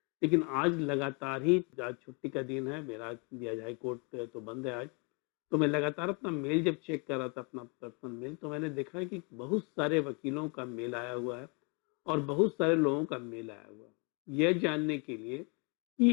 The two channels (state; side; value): quieter; right; 31.0 dB